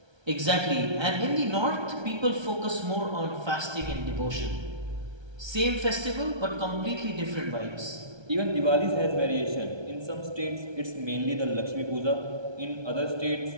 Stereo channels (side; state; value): left; late; 1.3 ms